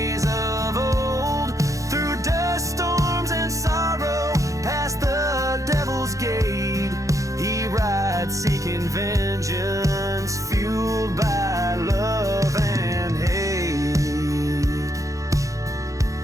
of old. Through dust storms and sorrow, past the devil's gate, he rides seeking vengeance, fueled by love and hate.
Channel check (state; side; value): late; left; 0.16 ms